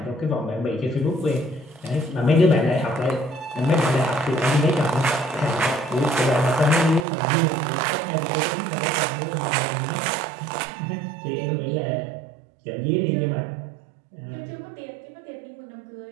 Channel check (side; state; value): left; drops out; at 7.1 s